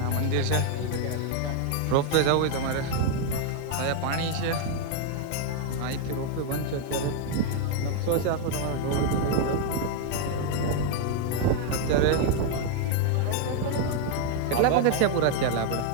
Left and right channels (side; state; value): both; different; correlation 0.00